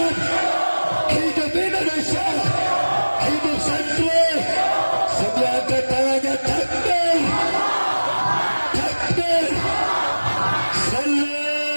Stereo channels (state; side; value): inverted; both; correlation -1.00